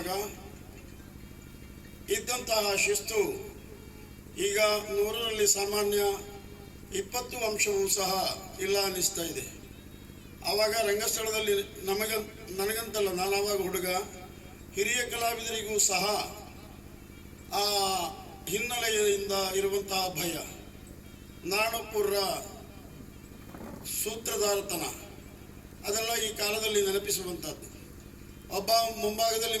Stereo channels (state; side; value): identical; both; correlation 1.00